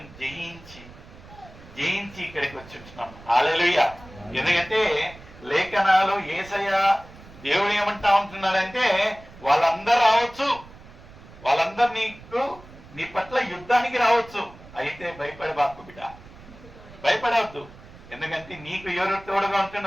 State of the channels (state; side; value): noise; right; rumble, 20 dB below the sound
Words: జయించి ఇక్కడికి వచ్చి ఉంటున్నాం. హల్లెలూయా. ఎందుకంటే లేఖనాలు యేసయ్య దేవుడు ఏమంటా ఉంటున్నాడంటే, వాళ్ళందరూ రావచ్చు, వాళ్ళందరూ నీ పట్ల యుద్ధానికి రావచ్చు, అయితే భయపడబాకు బిడ్డ, భయపడవద్దు. ఎందుకంటే నీకు ఎవరు తోడుగా